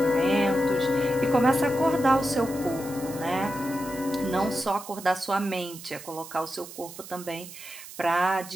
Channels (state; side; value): noise; right; hiss, 14 dB below the sound